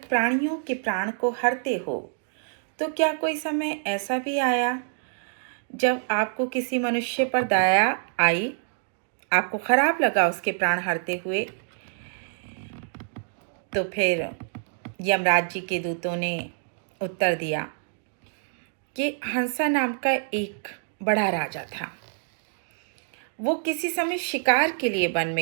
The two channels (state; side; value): silent; left; digital silence